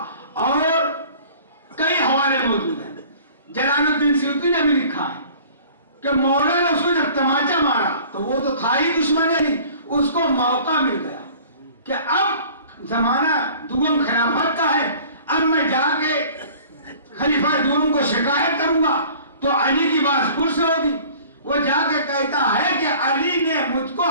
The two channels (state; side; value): inverted; both; correlation -0.48